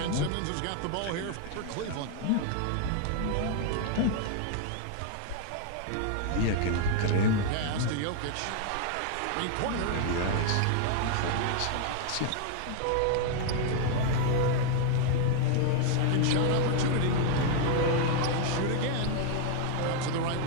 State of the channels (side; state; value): both; different; correlation 0.00